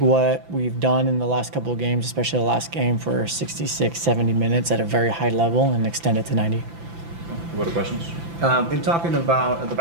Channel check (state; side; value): late; left; 5.9 ms